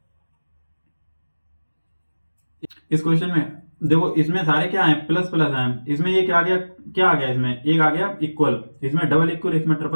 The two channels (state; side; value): inverted; both; correlation -1.00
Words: इस क्वेश्चन में देखो, इसमें सारे क्या है, प्लस प्लस हैं। इसमें ये क्या आ गया, क्या आ गया, इसमें एक आ गया इक्वल, इसमें डबल इक्वल, इसमें